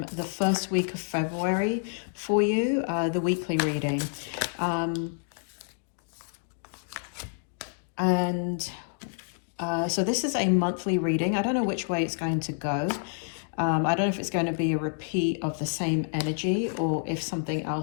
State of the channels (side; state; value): right; silent; digital silence